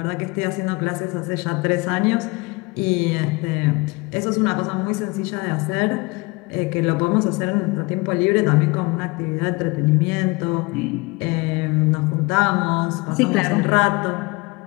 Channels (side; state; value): right; quieter; 25.5 dB